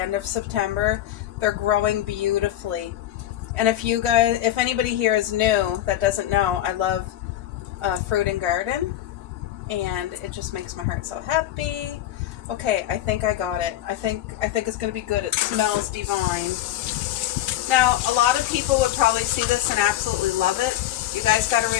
of September. They're growing beautifully. And if anybody here is new that doesn't know, I love fruit and garden. And it just makes my heart so happy. Okay, I think I got it. I think it's going to be good. It smells divine. Now, a lot of people would probably see this and absolutely love it. You guys got to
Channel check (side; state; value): right; quieter; 13.0 dB